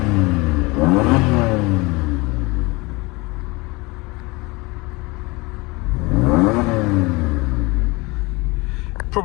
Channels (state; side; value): quieter; right; 24.6 dB